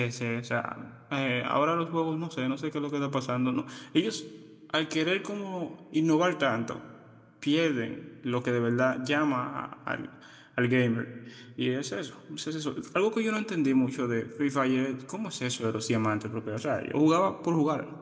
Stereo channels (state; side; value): identical; both; correlation 1.00